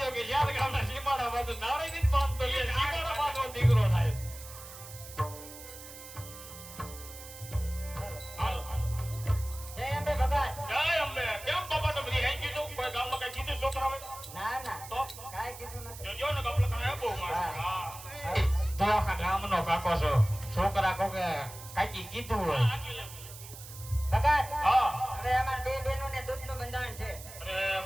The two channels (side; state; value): right; noise; hiss, 14 dB below the sound